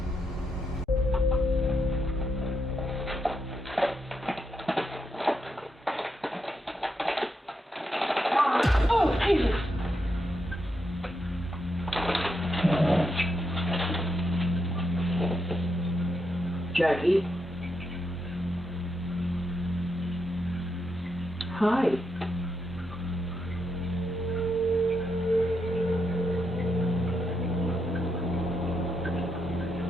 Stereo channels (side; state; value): both; normal; correlation 0.82